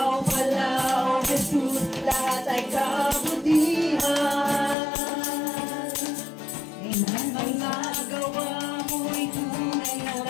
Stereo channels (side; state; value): right; drops out; at 4.8 s